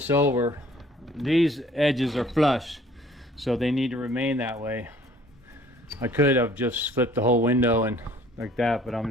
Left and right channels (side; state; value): both; normal; correlation 0.55